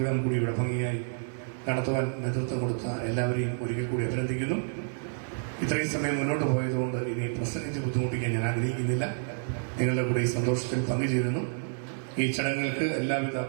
കൂടി ഇവിടെ ഭംഗിയായി നടത്തുവാൻ നേതൃത്വം കൊടുത്ത എല്ലാവരെയും ഒരിക്കൽ കൂടി അഭിനന്ദിക്കുന്നു. ഇത്രയും സമയം മുന്നോട്ട് പോയതുകൊണ്ട് ഇനി പ്രസംഗിച്ച് ബുദ്ധിമുട്ടിക്കാൻ ഞാൻ ആഗ്രഹിക്കുന്നില്ല. നിങ്ങളുടെ കൂടെ ഈ സന്തോഷത്തിൽ പങ്കുചേരുന്നു. ഈ ചടങ്ങുകൾക്ക് എല്ലാവിധ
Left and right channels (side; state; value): left; silent; 57 dB below the other